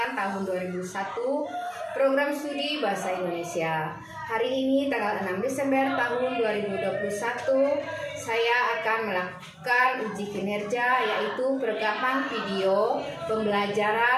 tahun 2001 Program Studi Bahasa Indonesia. Hari ini tanggal 6 Desember tahun 2021 saya akan melakukan uji kinerja, yaitu perekaman video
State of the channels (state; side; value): identical; both; correlation 1.00